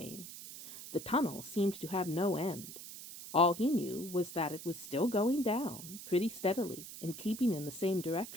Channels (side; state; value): right; noise; hiss, 12 dB below the sound